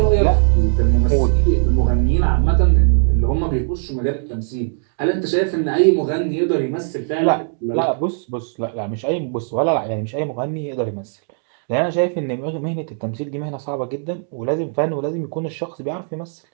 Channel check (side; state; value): left; silent; digital silence